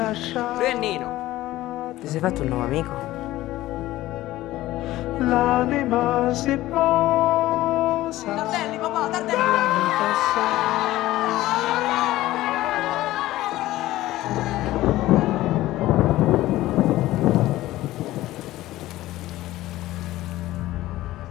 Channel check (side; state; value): right; quieter; 16.2 dB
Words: Lui è Nino. Ti sei fatto un nuovo amico? L'anima si posa. Tardelli, papà, Tardelli!